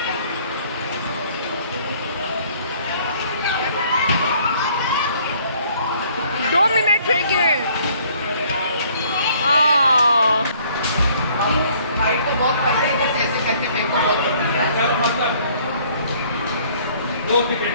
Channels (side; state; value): both; inverted; correlation -0.59